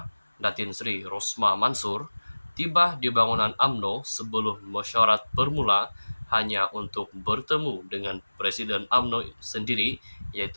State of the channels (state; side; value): inverted; both; correlation -1.00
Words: Datin Sri Rosmah Mansur tiba di bangunan UMNO sebelum mesyuarat bermula hanya untuk bertemu dengan Presiden UMNO sendiri,